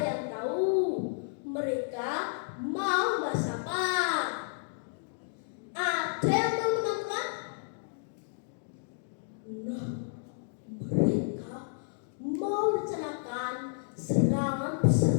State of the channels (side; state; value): right; silent; digital silence